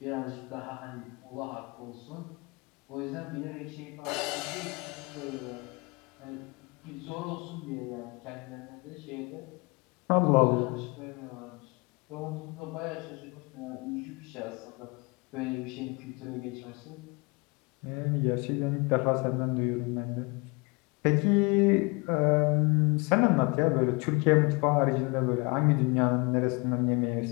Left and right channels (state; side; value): quieter; right; 28.8 dB